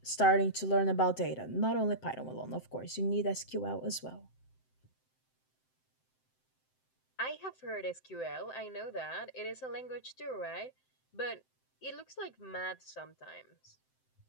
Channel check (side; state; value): right; late; 7.7 ms